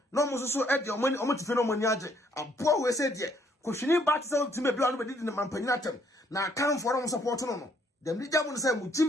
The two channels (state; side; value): normal; both; correlation 0.67